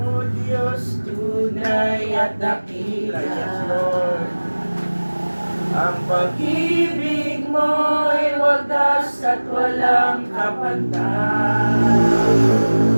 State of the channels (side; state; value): both; inverted; correlation -1.00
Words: O Diyos, tunay at dakila. Yes, Lord. Ang pag-ibig mo'y wagas at walang kapantay.